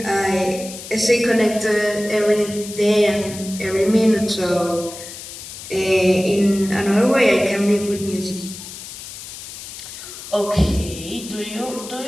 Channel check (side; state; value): left; noise; hiss, 12 dB below the sound